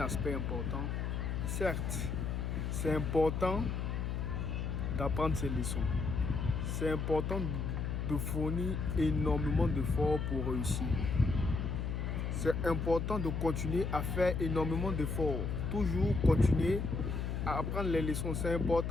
aspect important. Certes, c'est important d'apprendre ces leçons. C'est important de fournir énormément d'efforts pour réussir. C'est important de continuer à faire énormément d'efforts. Toujours continuer à apprendre les leçons, c'est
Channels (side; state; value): left; noise; hum, 2 dB below the sound